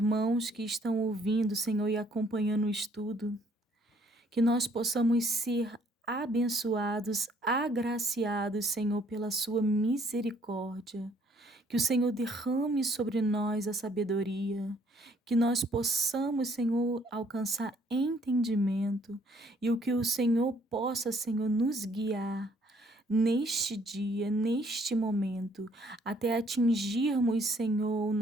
que estão ouvindo, Senhor, e acompanhando o estudo, que nós possamos ser abençoados, agraciados, Senhor, pela sua misericórdia, que o Senhor derrame sobre nós a sabedoria, que nós possamos, Senhor, alcançar entendimento e o que o Senhor possa, Senhor, nos guiar neste dia, neste momento, até atingirmos, Senhor, o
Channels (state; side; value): normal; both; correlation 0.64